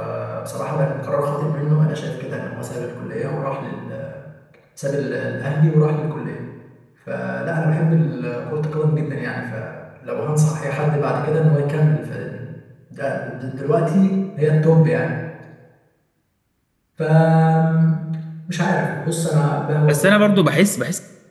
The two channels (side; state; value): both; identical; correlation 1.00